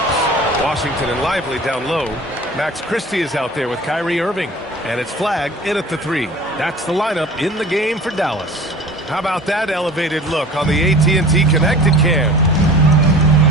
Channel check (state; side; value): normal; both; correlation 0.42